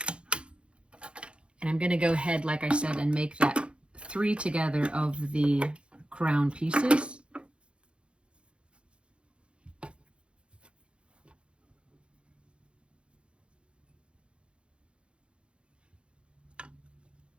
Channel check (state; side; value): late; left; 0.057 ms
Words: And I'm going to go ahead, like I said, and make that 3 together of the crown pieces.